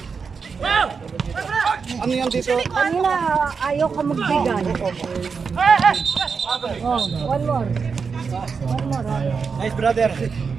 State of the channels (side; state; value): left; quieter; 5.5 dB